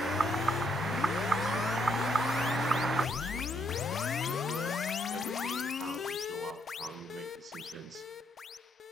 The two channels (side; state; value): both; normal; correlation 0.73